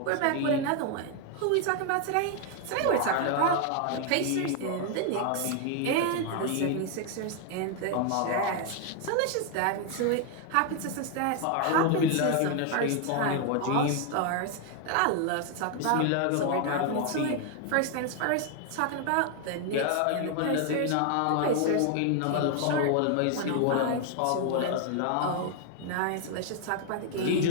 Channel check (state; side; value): different; both; correlation 0.00